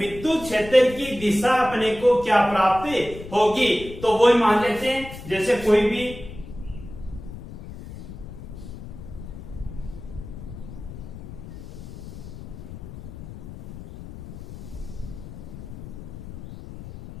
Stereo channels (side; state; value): left; noise; rumble, 12 dB below the sound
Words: क्षेत्र की दिशा अपने को क्या प्राप्त होगी। तो वो मान लेते हैं, जैसे कोई भी